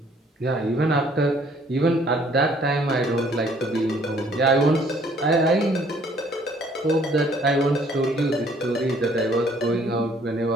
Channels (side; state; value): both; normal; correlation 0.61